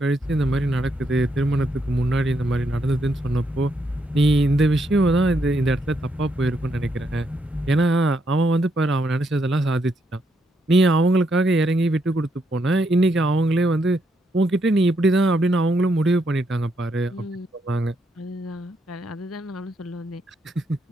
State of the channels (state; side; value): normal; both; correlation 0.77